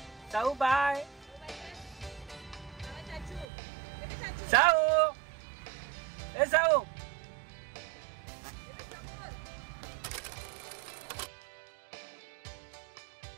साऊ बाय. साऊ ए साऊ.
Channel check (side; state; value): left; drops out; at 3.5 s